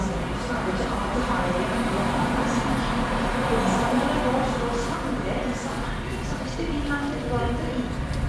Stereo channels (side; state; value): both; identical; correlation 1.00